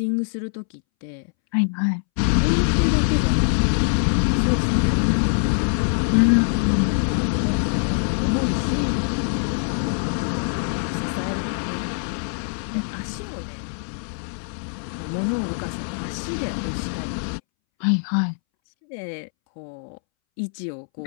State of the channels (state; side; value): silent; right; 63 dB below the other